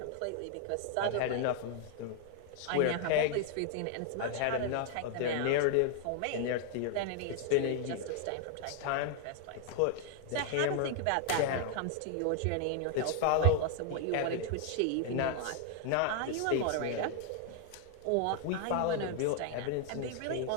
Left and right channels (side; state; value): both; different; correlation 0.00